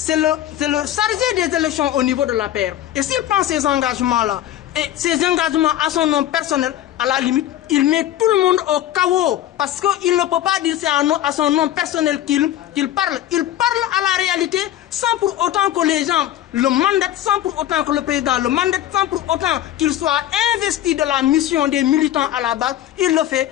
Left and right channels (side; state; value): right; quieter; 12.6 dB